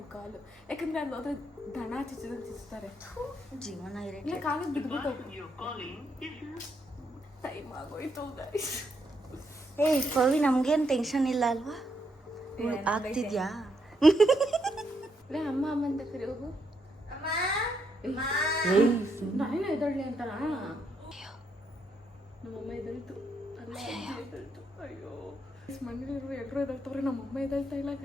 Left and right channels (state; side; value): normal; both; correlation 0.78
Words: ಕಾಲು, ಯಾಕಂದ್ರೆ ಅಲ್ಲಿ ಹೋದ್ರೆ ದನ ಚಿಚ್ತಾರೆ. ಜೀವನ ಇಲ್ಲ ಕಾಲಿಗೆ ಬಿದ್ಬಿಟ್ಟು ಟೈಮ್ ಆಗೋಯ್ತು ಗೈಸ್. ಪವಿ ನಮ್ಗೇನು ಟೆನ್ಷನ್ ಇಲ್ಲ ಅಲ್ವಾ? ಆಗ್ತಿದ್ಯಾ? ಅಮ್ಮ ಅಂತ ಕರಿ ಹೋಗು. ನಾನೇನು ಎದೊಳ್ಳಿ ಅಂತಾರ. ನಮ್ಮಮ್ಮ ಎದಳ್ತು. ಅಯ್ಯೋ ಮನೇಲಿರುವ ಎಲ್ಲರೂ ಎದಳ್ತವ್ರೆ, ನಮ್ಮಮ್ಮ ಎದಳ್ತಾ ಇಲ್ಲ